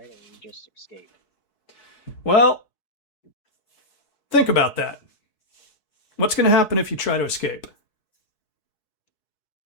Or we just escape? Well, think about that. What's going to happen if you try to escape?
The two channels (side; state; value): right; late; 4.7 ms